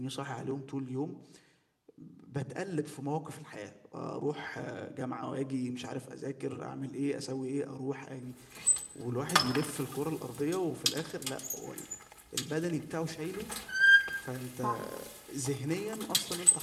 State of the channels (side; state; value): both; identical; correlation 1.00